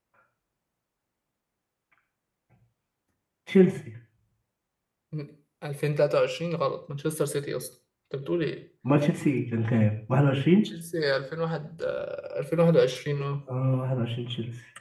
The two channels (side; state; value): both; identical; correlation 1.00